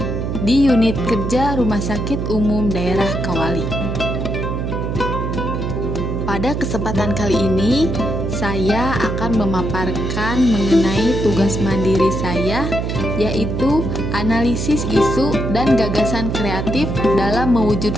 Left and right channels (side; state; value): right; noise; hum, 2 dB below the sound